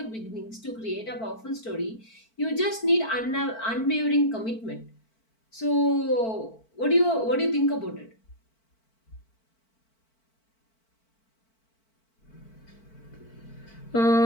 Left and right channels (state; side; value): late; right; 4.5 ms